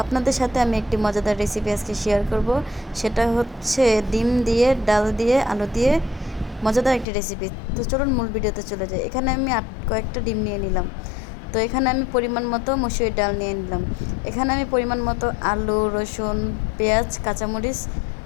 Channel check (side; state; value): right; drops out; at 7.1 s